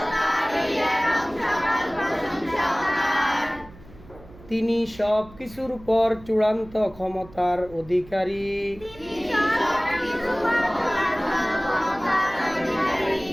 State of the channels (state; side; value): noise; right; hum, 21 dB below the sound